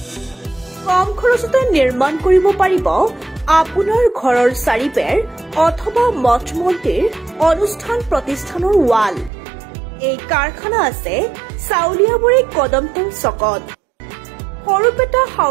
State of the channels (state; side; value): drops out; left; at 9.3 s